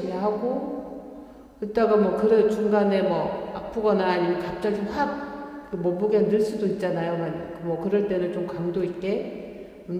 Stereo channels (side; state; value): both; identical; correlation 1.00